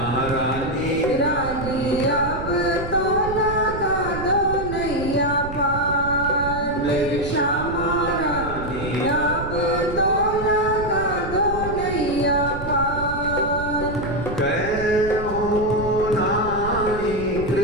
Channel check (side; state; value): right; noise; rumble, 9 dB below the sound